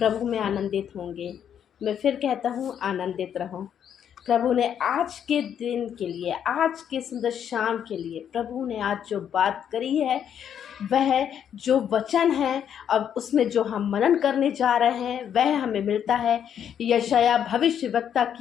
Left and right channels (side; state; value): right; quieter; 8.9 dB